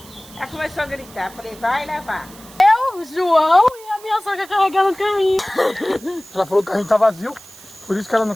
ela começou a gritar. Falei, vai levar. Eu, João e a minha sogra carregando o carrinho. Ela falou que o carrinho tá vazio, por isso que ela não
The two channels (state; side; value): noise; right; hiss, 21 dB below the sound